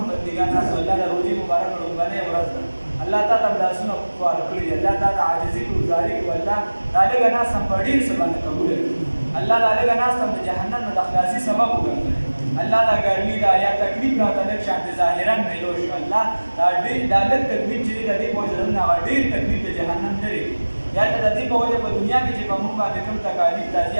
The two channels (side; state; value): both; inverted; correlation -1.00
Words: بندګان راسو الله د روژې مبارکه لومړنۍ ورځ ده الله تا ته لاسونه خوار کړي دي الله تا ته عاجزي کړو ګزاري کړو الله دا لږه ناست هم په ډېر څه باندې قبوله کړي الله دا لږه ناست هم د جهنم نه د خلاصي سبب وګرځوي الله دا ګرمي دا یا تکلیف راته لږ شانتې ظاهرا میلو شو الله دا لږ تکلیف چې دی د دې په وجه نه هغه ډېر تکلیف د جهنم لري یا د دې په وجه په دنیا کې چې په موږ باندې کوم تکالیف راځي